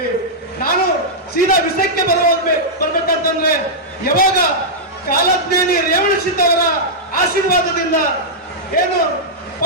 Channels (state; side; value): normal; both; correlation -0.09